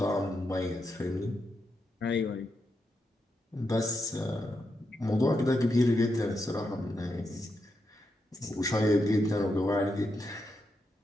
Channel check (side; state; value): both; normal; correlation 0.84